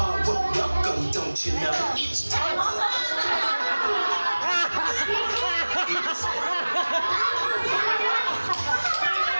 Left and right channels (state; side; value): inverted; both; correlation -1.00